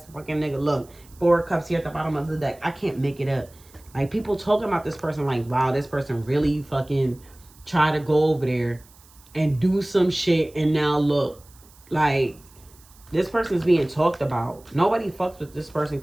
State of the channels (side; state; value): right; noise; hiss, 26 dB below the sound